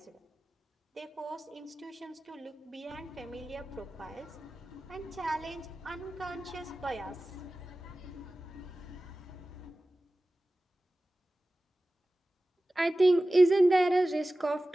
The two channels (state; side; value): normal; both; correlation 0.96